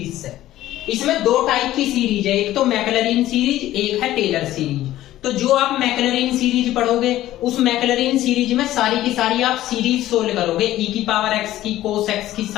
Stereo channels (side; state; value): right; quieter; 14.4 dB